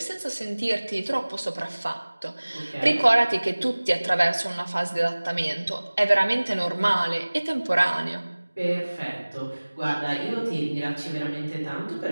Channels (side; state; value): both; inverted; correlation -1.00